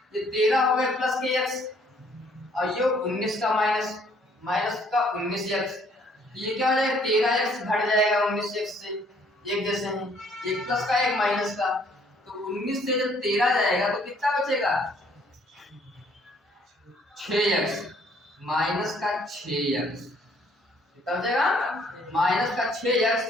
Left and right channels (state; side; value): normal; both; correlation 0.63